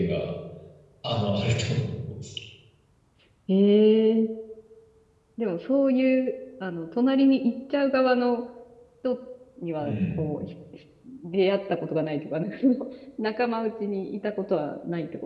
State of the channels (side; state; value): both; identical; correlation 1.00